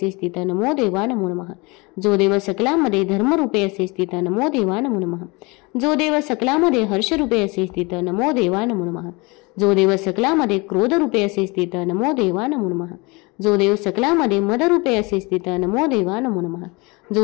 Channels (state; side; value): quieter; right; 26.5 dB